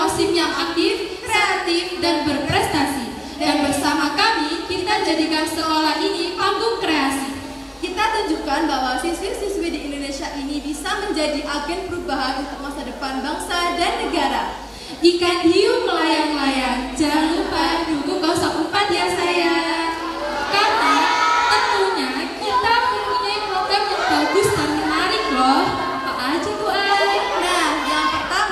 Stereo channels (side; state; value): both; identical; correlation 1.00